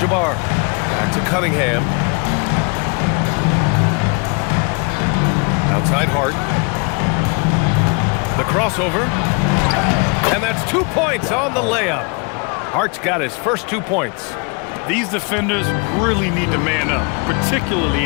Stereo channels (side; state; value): right; quieter; 33.8 dB